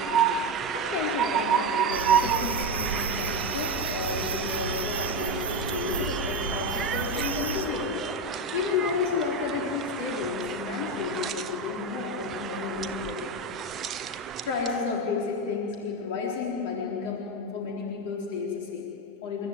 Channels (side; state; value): both; normal; correlation 0.13